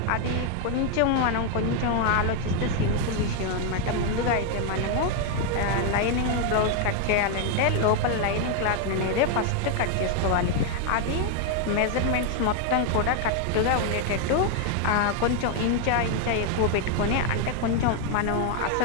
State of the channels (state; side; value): different; both; correlation 0.01